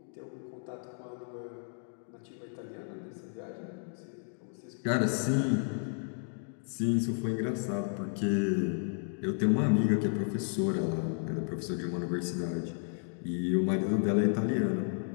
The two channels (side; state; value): right; silent; 56 dB below the other